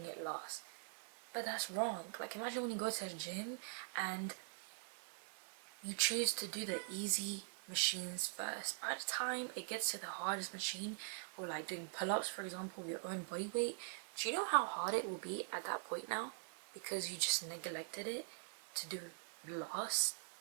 it last. But that's wrong. Like, imagine when you go to a gym and you choose to do the easy machines first. By the time it gets to the hardest machine, or like doing pull-ups, for example, with your own body weight, do you know how hard it will be at that point now? Because you just neglected it to do last.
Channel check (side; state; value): left; silent; digital silence